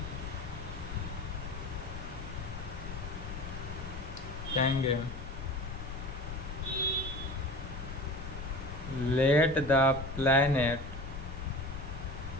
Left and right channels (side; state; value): left; noise; rumble, 8 dB below the sound